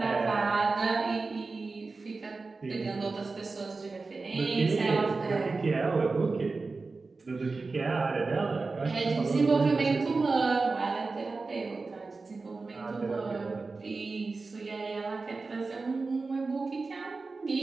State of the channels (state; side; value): quieter; left; 3.9 dB